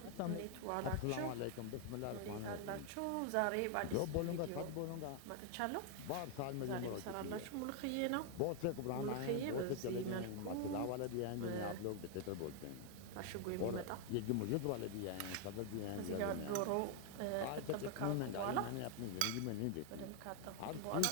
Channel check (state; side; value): different; both; correlation 0.00